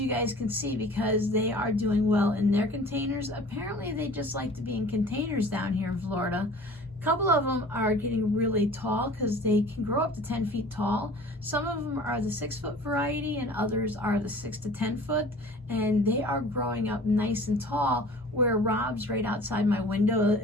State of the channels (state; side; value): normal; both; correlation 0.45